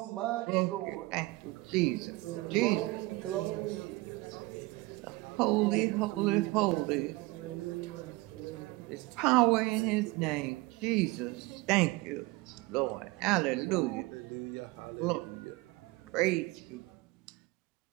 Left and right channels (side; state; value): left; quieter; 21.6 dB